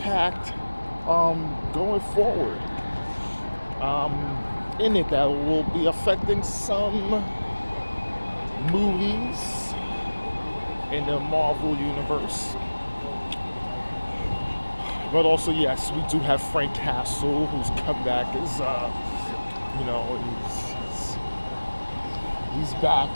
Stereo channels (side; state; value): both; inverted; correlation -1.00